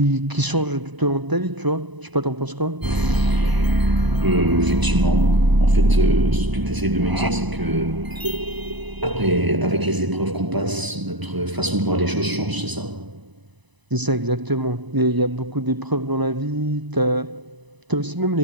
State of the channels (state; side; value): late; left; 1.0 ms